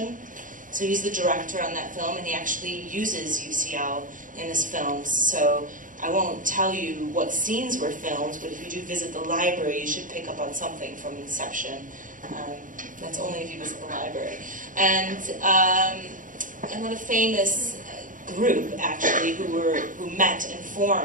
So he's the director on that film, and he actually uses UCL in his films. So I won't tell you what scenes were filmed, but if you do visit the library, you should pick up on something from Inception. That's only if you visit the library. And another famous group, actually, who met and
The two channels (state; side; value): late; left; 0.38 ms